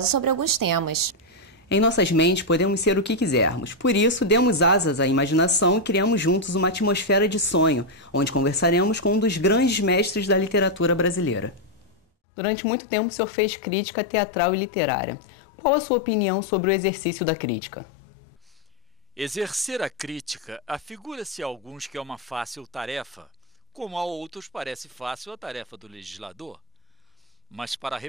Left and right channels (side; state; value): both; normal; correlation 0.00